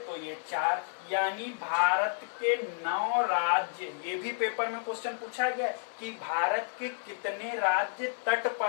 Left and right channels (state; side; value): silent; right; digital silence